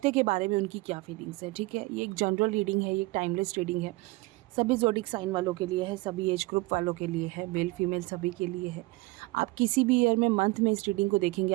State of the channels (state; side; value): quieter; left; 22.2 dB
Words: के बारे में उनकी क्या फीलिंग्स है। ठीक है, ये एक जनरल रीडिंग है, ये एक टाइमलेस रीडिंग है। सभी ज़ोडिक साइन वालों के लिए है, सभी एज ग्रुप वालों के लिए है, मेल फीमेल सभी के लिए है। आप किसी भी ईयर में मंथ में इस रीडिंग को देखेंगे,